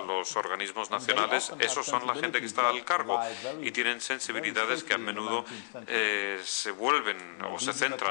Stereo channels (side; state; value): right; silent; digital silence